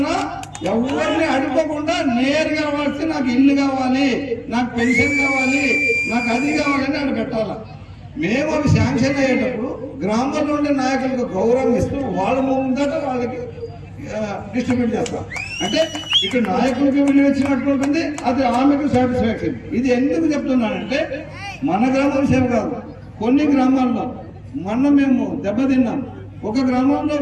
ఎవరిని అడుకోకుండా నేరుగా వచ్చి నాకు ఇల్లు కావాలి, నాకు పెన్షన్ కావాలి, నాకు అది కావాలని అక్కడ పెట్టాలి. మేము అవి శాంక్షన్ అయ్యేటప్పుడు గ్రామంలో ఉండే నాయకులకు గౌరవం ఇస్తూ వాళ్ళ ముందట వాళ్ళకి డిస్ట్రిబ్యూట్ చేస్తాం. అంటే ఇక్కడ నాయకులకి విలువ ఇచ్చినట్టు ఉంటుంది, అది ఆమెకు సాటిస్ఫాక్షన్. ఇది ఎందుకు చెప్తున్నానంటే మన గ్రామ విషయం కాదు, కొన్ని గ్రామాల్లో మొన్న మేము దెబ్బతిన్నాం. ఒక గ్రామంలో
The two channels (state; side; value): identical; both; correlation 1.00